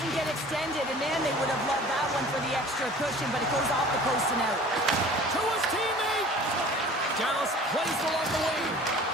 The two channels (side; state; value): both; normal; correlation 0.45